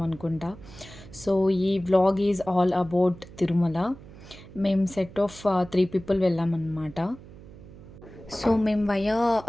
అనుకుంటా. సో ఈ vlog is all about Tirumala. మేము సెట్ ఆఫ్ 3 పీపుల్ వెళ్ళామన్నమాట. సో మేము వయా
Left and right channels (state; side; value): noise; right; hum, 18 dB below the sound